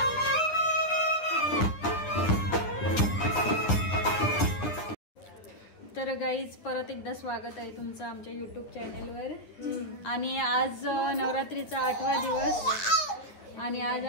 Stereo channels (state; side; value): late; right; 9.8 ms